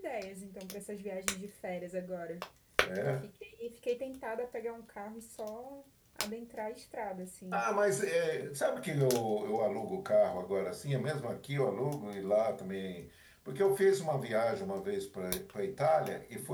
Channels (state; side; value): identical; both; correlation 1.00